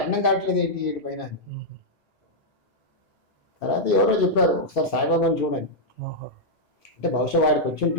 కావట్లేదు ఏంటి వీటి పైన అని. తర్వాత ఎవరో చెప్పారు ఒకసారి సాయిబాబాని చూడండి అంటే బహుశా వాడికి వచ్చి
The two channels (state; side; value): normal; both; correlation -0.05